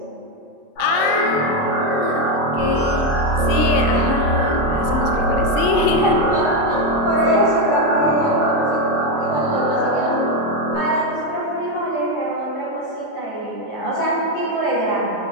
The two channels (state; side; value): late; right; 30 ms